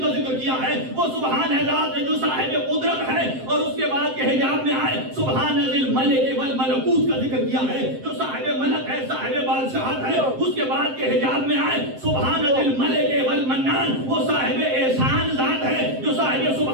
ذکر کیا ہے. وہ سبحان ہے ذات جو صاحب قدرت ہے. اور اس کے بعد کے حجاب میں آئے سبحان ذی الملک والملکوت کا ذکر کیا ہے، جو صاحب ملک ہے، صاحب بادشاہت ہے. اس کے بعد کے حجاب میں آئے سبحان ذی الملک والمنان، وہ صاحب احسان ذات ہے، جو صاحب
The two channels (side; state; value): left; late; 7.7 ms